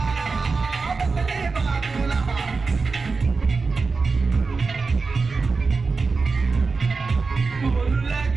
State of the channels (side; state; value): left; quieter; 4.4 dB